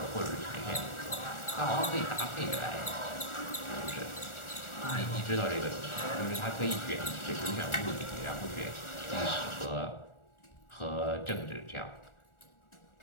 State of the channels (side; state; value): right; late; 1.4 ms